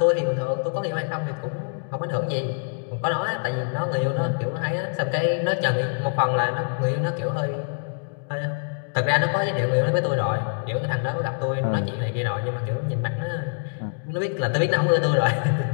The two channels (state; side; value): silent; right; digital silence